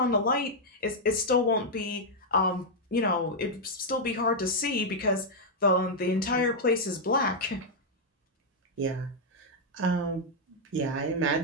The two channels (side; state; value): both; normal; correlation -0.03